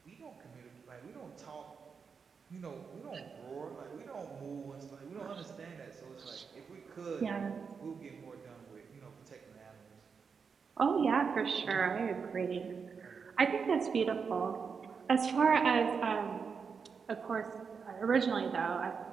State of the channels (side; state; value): left; quieter; 5.8 dB